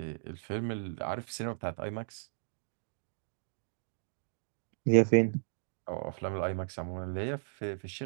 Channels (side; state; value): left; silent; digital silence